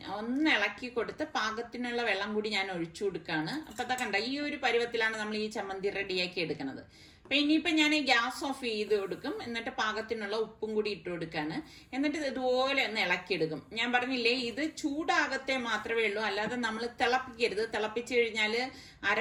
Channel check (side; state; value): both; identical; correlation 1.00